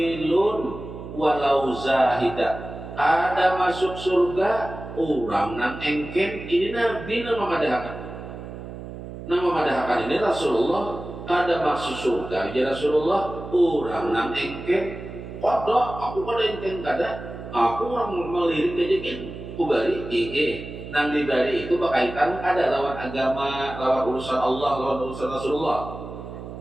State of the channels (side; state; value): right; noise; hum, 11 dB below the sound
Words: walau zahida. Ada masuk surga orang nang engken, ini Nabi nang memadahkan. Nang memadahkan ini Rasulullah, ada masuk surga jadi Rasulullah, orang nang engken, kodok, aku pada engken kada, aku orang melirik aja kan, kubari, nang dibari itu berkaitan ada lawan agama, lawan urusan Allah, lawan urusan Rasulullah.